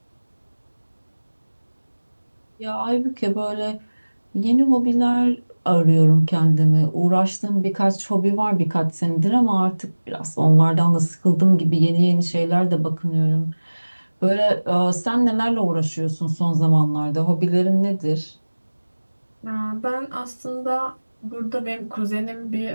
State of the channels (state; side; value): inverted; both; correlation -1.00